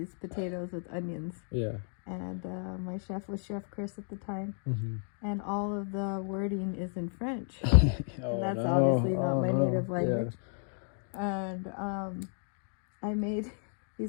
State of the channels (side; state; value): right; silent; 55 dB below the other